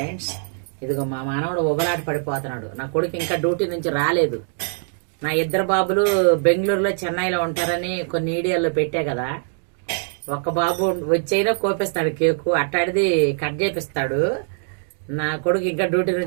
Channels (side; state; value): left; silent; 64 dB below the other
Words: ఇదిగో మా మానవుడు ఉబలాట పడిపోతున్నాడు. నా కొడుకు ఇంకా డ్యూటీ నుంచి రాలేదు. నా ఇద్దరు బాబులు బెంగళూరులో చెన్నైలో ఉంటారని కొన్ని వీడియోల్లో పెట్టా కదా. ఒక్క బాబు వచ్చైనా కోపిస్తాడు కేకు, అట్టాడిది కట్ చేపిస్తాడు. నా కొడుకు ఇంకా డ్యూటీ